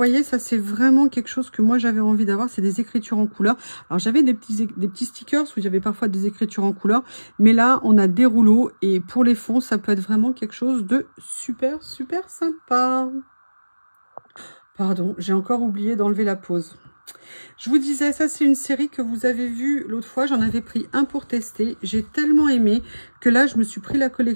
ça, c'est vraiment quelque chose que moi, j'avais envie d'avoir. C'est des écritures en couleur. Alors, j'avais des petits stickers où j'avais parfois des écritures en couleur. Mais là, on a des rouleaux. Et pour les fonds, ça peut être vraiment quelque chose de super sympa. Pardon, j'ai encore oublié d'enlever la pause. Je vous disais, ça c'est une série que vous avez vue l'autre fois. J'en avais pris un pour tester. J'ai tellement aimé que là, je me suis pris la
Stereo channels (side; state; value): both; inverted; correlation -1.00